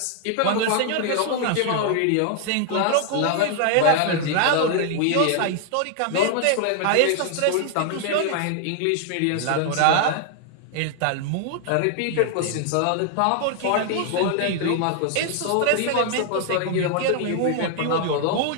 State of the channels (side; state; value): both; different; correlation 0.00